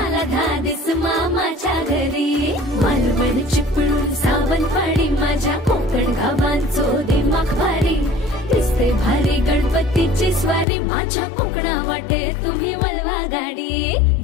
धादिस मामाच्या घरी मालवण चिपळूण सावंतवाडी माझ्या कोकण गावांचो दिमाग भारी दिसते भारी गणपतीची स्वारी माझ्या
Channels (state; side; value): drops out; right; at 10.7 s